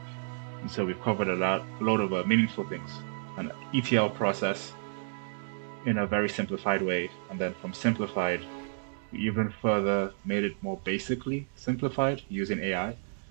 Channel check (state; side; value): silent; left; digital silence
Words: And so we've covered a lot of meaningful things. An ETL process in a very simplified way, and then from simplified, we even further made it more basically simplified using AI.